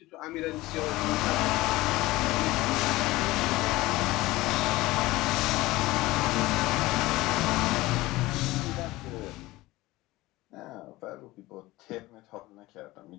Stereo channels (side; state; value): right; quieter; 19.1 dB